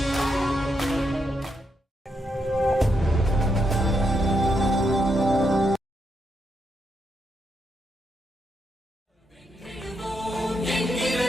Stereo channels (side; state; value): both; normal; correlation 0.81